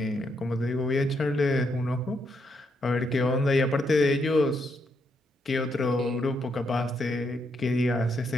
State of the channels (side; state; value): both; normal; correlation 0.78